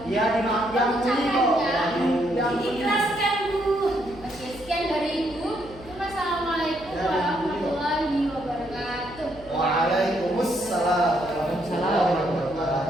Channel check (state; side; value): noise; left; hum, 19 dB below the sound